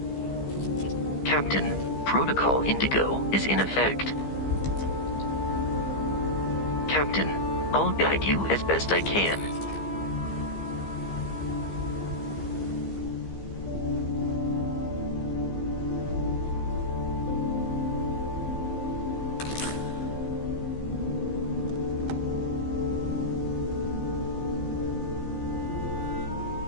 Captain, Protocol Indigo is in effect. Captain, I'll guide you as best I can.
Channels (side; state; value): right; late; 15 ms